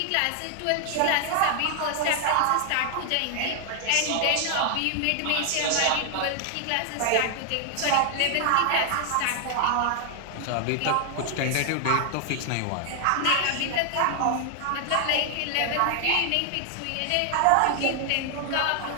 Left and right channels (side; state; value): both; different; correlation 0.00